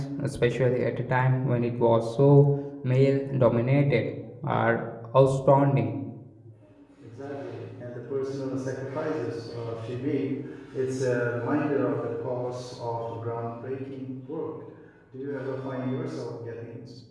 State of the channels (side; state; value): both; identical; correlation 1.00